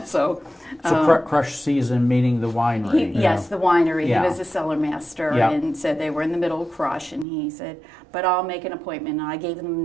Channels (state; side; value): drops out; left; at 7.2 s